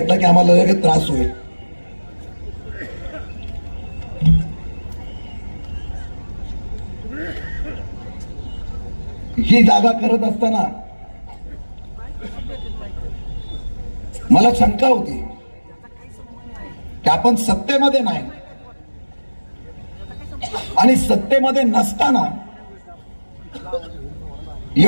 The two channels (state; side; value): inverted; both; correlation -1.00